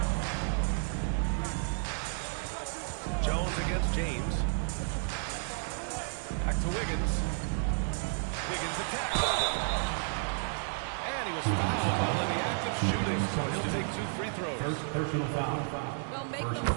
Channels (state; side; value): silent; left; 56 dB below the other